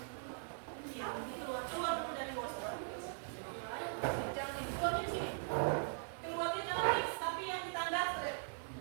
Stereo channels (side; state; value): left; silent; digital silence